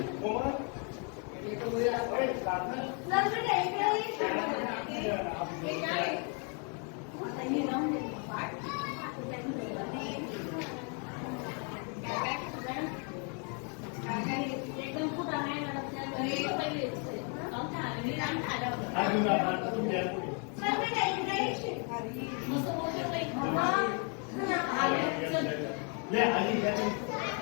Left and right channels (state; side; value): quieter; right; 38.2 dB